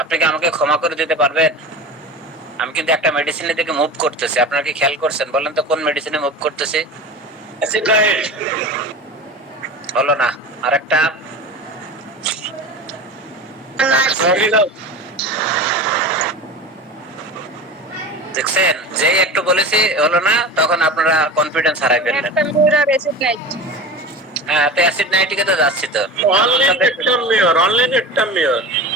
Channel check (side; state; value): both; normal; correlation 0.31